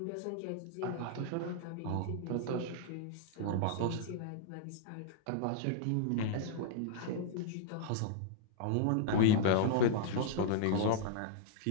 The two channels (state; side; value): different; both; correlation -0.01